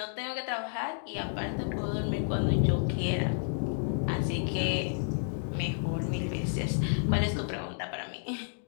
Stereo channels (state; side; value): silent; right; digital silence